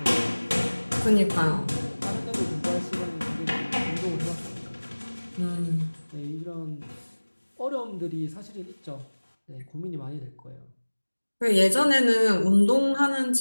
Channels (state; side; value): inverted; both; correlation -1.00